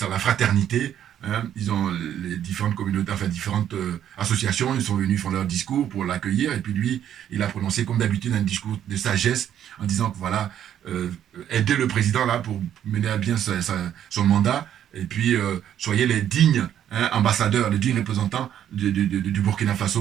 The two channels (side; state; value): left; quieter; 10.3 dB